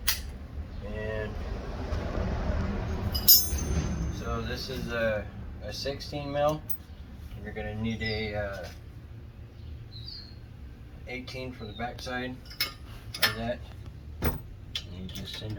And so this is a 16 mil. You're going to need a 18 for the backside of that. You just send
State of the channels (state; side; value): identical; both; correlation 1.00